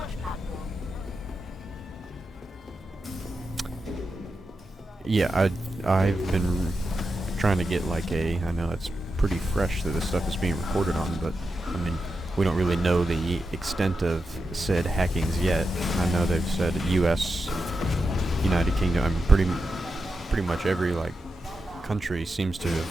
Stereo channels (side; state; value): both; normal; correlation 0.89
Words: platform. Yeah, I've been trying to get like I know it's pretty fresh that this stuff is being recorded on, but I mean, we don't really know the extent of said hackings yet. I know they've said US, United Kingdom, I mean pretty much every like country seems to